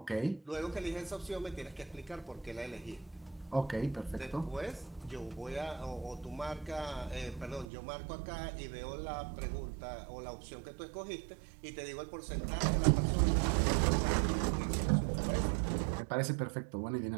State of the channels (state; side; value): drops out; left; at 7.7 s